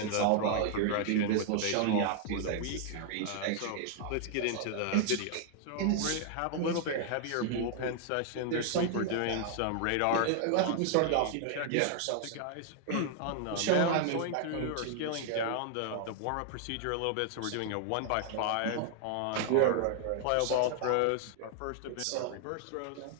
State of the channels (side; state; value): both; different; correlation 0.00